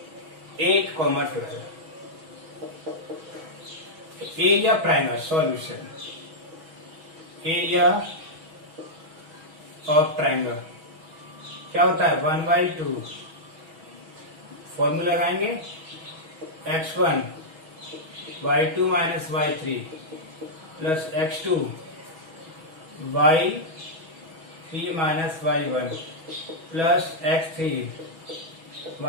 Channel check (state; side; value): late; left; 6.2 ms